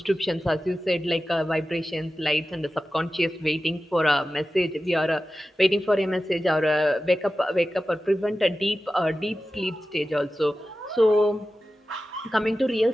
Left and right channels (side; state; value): both; normal; correlation 0.94